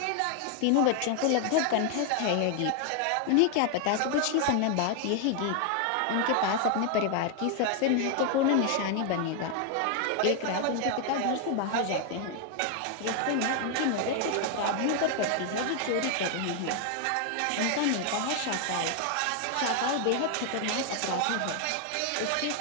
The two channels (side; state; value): both; different; correlation 0.00